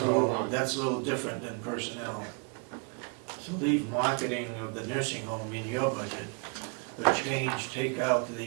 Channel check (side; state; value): left; quieter; 34.8 dB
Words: and move home, on. that's a little different than personnel. So leave marketing of the nursing home in your budget, but take out